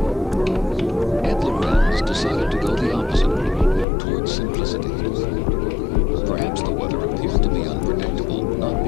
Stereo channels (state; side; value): drops out; right; at 3.9 s